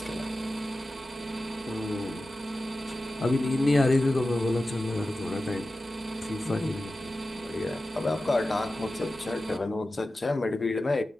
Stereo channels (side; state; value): both; normal; correlation 0.94